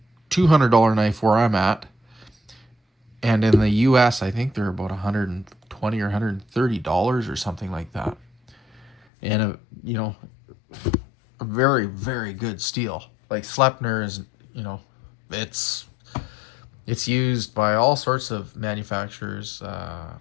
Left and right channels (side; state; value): right; drops out; at 9.0 s